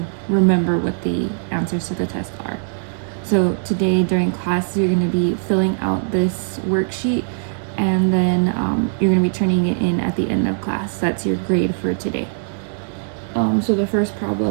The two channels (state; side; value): silent; left; 65 dB below the other